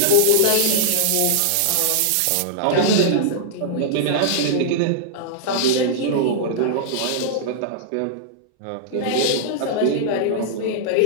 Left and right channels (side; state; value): both; different; correlation -0.01